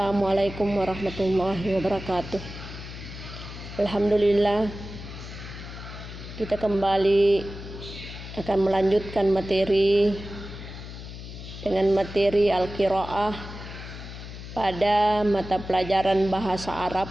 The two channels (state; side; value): noise; left; hum, 12 dB below the sound